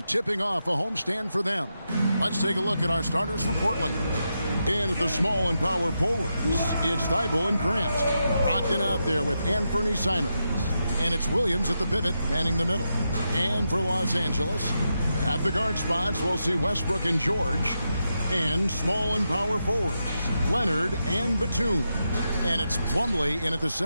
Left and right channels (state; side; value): inverted; both; correlation -0.86